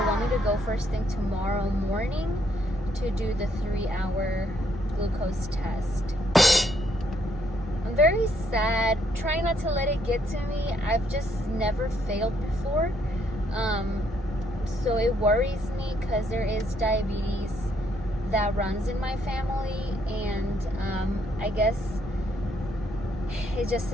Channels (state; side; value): normal; both; correlation 0.71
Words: want me to go first thing tomorrow morning to do the 3-hour glucose test. I'm very sad, trying not to let it get to me. I've just never failed before. So it worries me because there is diabetes that runs in my family, and I guess it just